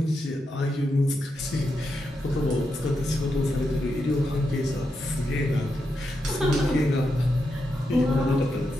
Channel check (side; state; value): both; normal; correlation 0.85